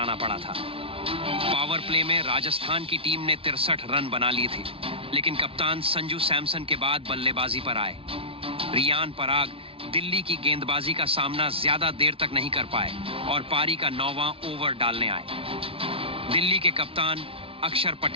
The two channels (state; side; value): late; left; 0.26 ms